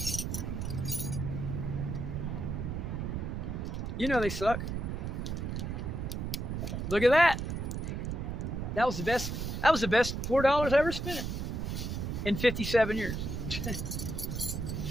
You know they suck. Look at that. That was the best $4 I ever spent in 57 years.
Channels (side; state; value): right; noise; rumble, 3 dB below the sound